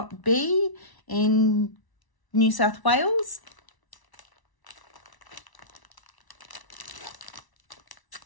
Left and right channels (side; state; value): right; late; 1.0 ms